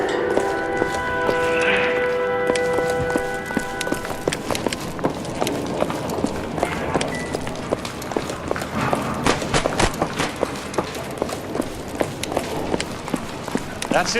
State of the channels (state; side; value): identical; both; correlation 1.00